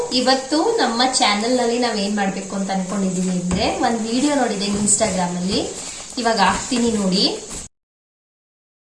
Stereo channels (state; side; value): identical; both; correlation 1.00